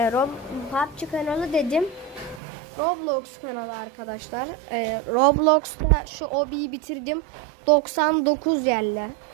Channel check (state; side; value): drops out; left; at 2.4 s